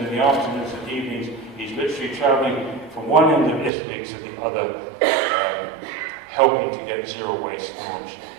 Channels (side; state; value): left; drops out; at 3.7 s